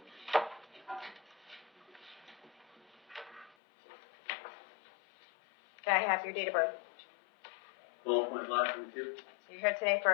Can I have your date of birth? 12.522. You're here today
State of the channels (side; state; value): right; drops out; at 3.6 s